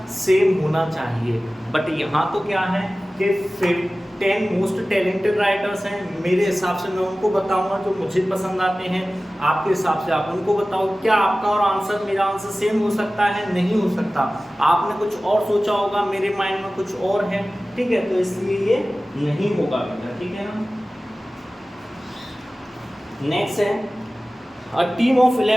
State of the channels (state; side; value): normal; both; correlation 0.96